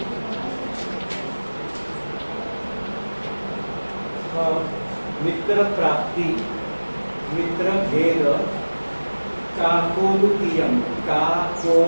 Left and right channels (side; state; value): both; inverted; correlation -1.00